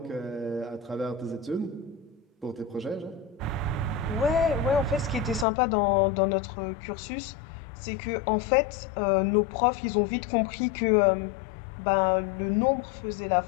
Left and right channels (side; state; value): right; drops out; at 5.5 s